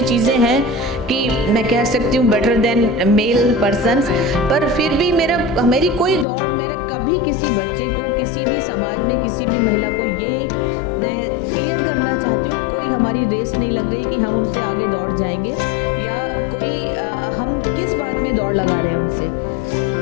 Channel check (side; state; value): right; drops out; at 6.2 s